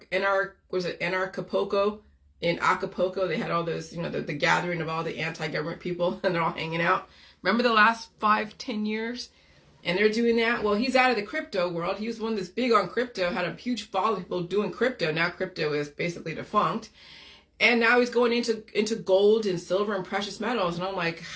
Acapulco. In Acapulco, they had all those, the gathering of all the anti-government people, and they're all hanging out. Remember the last 5-10 years? And they're doing that. Well, he's out of the crypto world. He was one that's big on crypto, had a huge following of people doing crypto. Now crypto is basically defunct. And now he's going into gold and silver and precious metals. And I'm like,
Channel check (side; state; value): both; identical; correlation 1.00